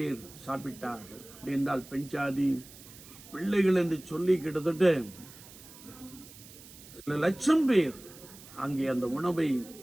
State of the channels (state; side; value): noise; right; hiss, 19 dB below the sound